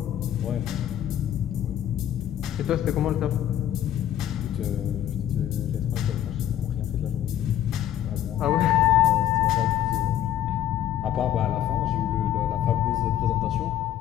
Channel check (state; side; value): quieter; right; 11.3 dB